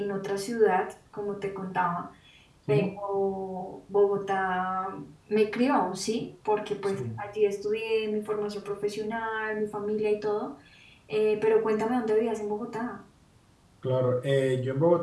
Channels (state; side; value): identical; both; correlation 1.00